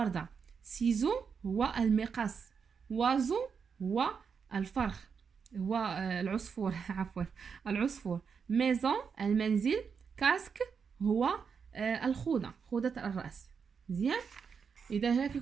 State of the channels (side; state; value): left; quieter; 6.2 dB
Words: ciseau هو المقص. oiseau هو الفرخ. هو العصفور عفوا، العصفور. ميزون المنزل. كاسك هو الخوذة، خوذة الرأس. مزيان. اذا هكا